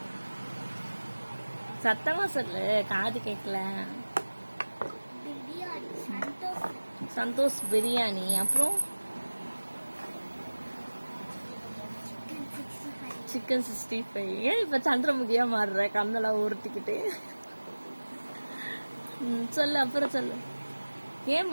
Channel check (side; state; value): both; inverted; correlation -1.00